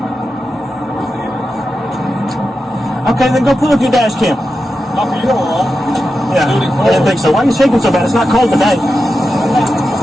Okay, then go pull up your dash cam. Not for you, all. Yeah, I didn't think so. Why are you shaking so bad? It's not cold today.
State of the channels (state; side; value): normal; both; correlation 0.90